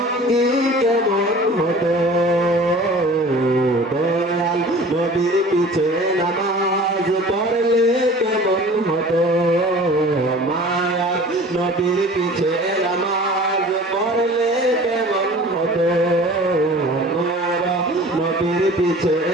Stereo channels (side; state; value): both; normal; correlation 0.44